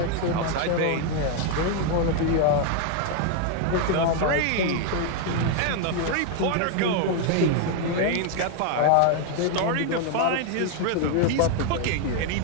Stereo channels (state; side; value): different; both; correlation 0.00